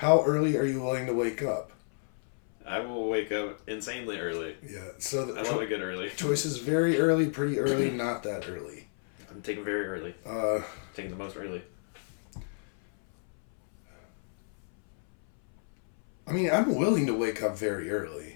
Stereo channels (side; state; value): right; silent; 58 dB below the other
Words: early are you willing to wake up? I will wake up insanely early. Yeah. So the I love a good early. choice is very early, pretty early, not that early. I'm taking very early. Taking the most early. I mean, I'm willing to wake up very early.